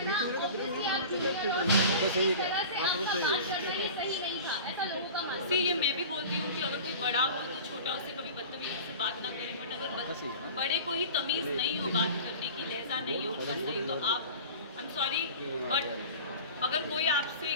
ये मैं भी बोलती हूँ कि अगर कोई बड़ा हो तो छोटा उससे कभी बदतमीजी से बात ना करें, बट अगर बड़े को ही तमीज़ नहीं हो बात करने की, लहजा नहीं हो उनका सही, तो आप आई एम सॉरी बट अगर कोई आपसे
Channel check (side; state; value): both; inverted; correlation -0.37